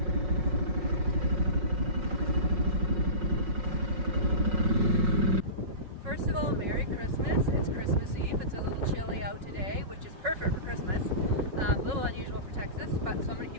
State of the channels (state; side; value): late; left; 5.5 ms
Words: First of all, Merry Christmas. It's Christmas Eve. It's a little chilly out today, which is perfect for Christmas. A little unusual for Texas, but so I'm going to